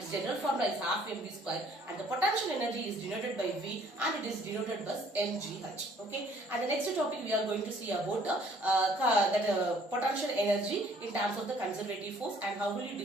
general formula is half mv square, and the potential energy is denoted by V and it is denoted by mgh. Okay, and the next topic we are going to see about potential energy in terms of the conservative force and how will you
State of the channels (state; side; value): normal; both; correlation 0.59